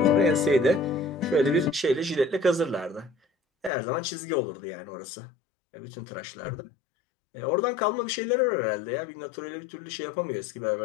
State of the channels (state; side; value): drops out; right; at 3.7 s